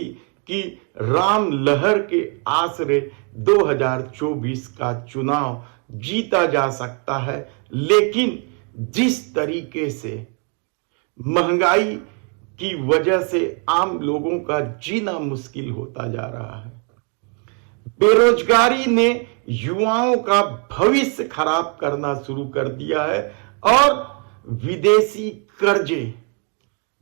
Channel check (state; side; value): quieter; left; 38.3 dB